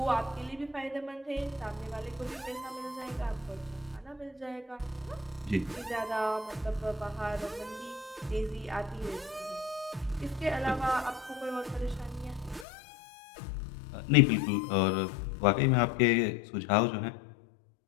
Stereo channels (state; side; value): drops out; right; at 12.7 s